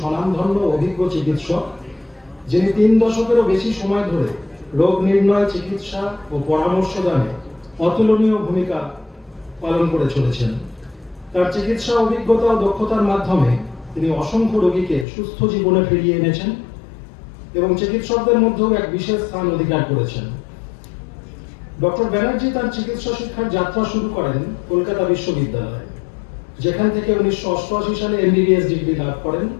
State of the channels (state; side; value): drops out; right; at 15.1 s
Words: অভিজ্ঞ চিকিৎসক, যিনি 3 দশকেরও বেশি সময় ধরে রোগ নির্ণয়, চিকিৎসা ও পরামর্শ দানে অতুলনীয় ভূমিকা পালন করে চলেছেন। তার চিকিৎসা অভিজ্ঞতা ও দক্ষতার মাধ্যমে তিনি অসংখ্য রোগীকে সুস্থ জীবনে ফিরিয়ে এনেছেন এবং চিকিৎসকদের মধ্যেও এক বিশেষ স্থান অধিকার করেছেন। ডক্টর ব্যানার্জি তার চিকিৎসা শিক্ষার যাত্রা শুরু করেন কলকাতা বিশ্ববিদ্যালয়ে, যেখান থেকে 1988 সালে MBBS ডিগ্রি লাভ করেন।